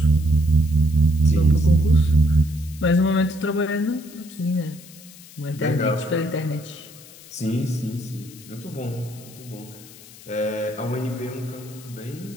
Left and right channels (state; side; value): noise; left; hiss, 20 dB below the sound